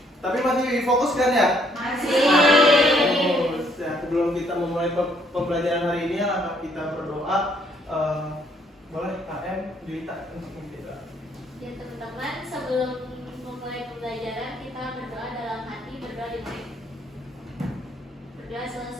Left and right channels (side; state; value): both; normal; correlation 0.68